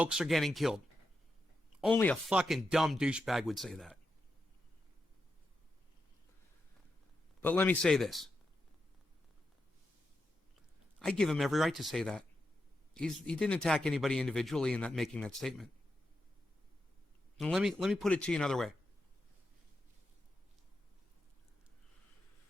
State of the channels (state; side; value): normal; both; correlation 0.87